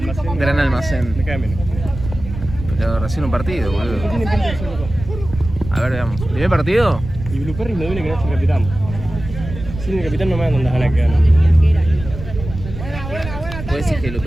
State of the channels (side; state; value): right; noise; rumble, 10 dB below the sound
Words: Gran almacén. Me cae menos. Pero recién un partido, ¿Qué boludo. tiene pinta de ser loco? A ver, veamos. ¿Primer partido? Y Blue Perry me duele que no esté el capitán. Sin el capitán no me dan tantas ganas que ganan. ¿Puede decir que